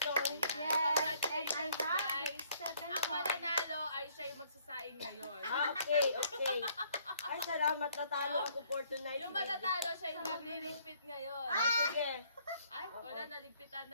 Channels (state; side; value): inverted; both; correlation -0.64